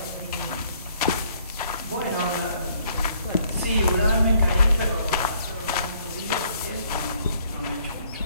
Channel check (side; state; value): both; inverted; correlation -0.64